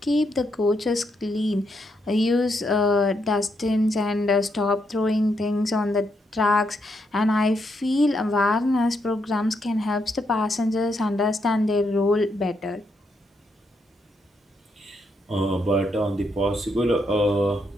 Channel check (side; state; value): both; normal; correlation 0.79